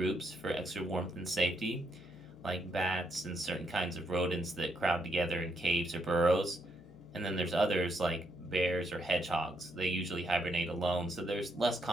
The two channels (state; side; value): noise; left; hum, 22 dB below the sound